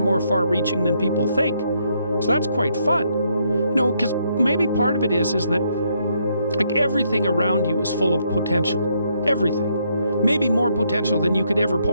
far-reaching than people think. So that's quite fun. You know, because maybe part of it is that like everything around you is full of potential. Everything. Maybe more potential than you could ever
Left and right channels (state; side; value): inverted; both; correlation -0.74